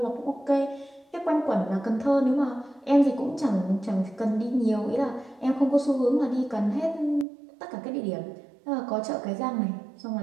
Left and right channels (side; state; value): left; drops out; at 7.2 s